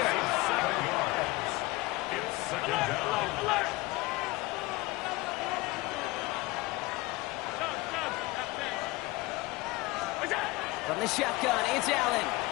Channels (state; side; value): quieter; right; 21.3 dB